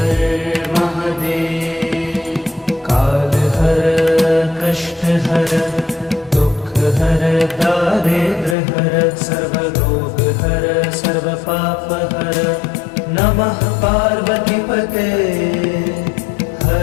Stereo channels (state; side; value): drops out; right; at 8.6 s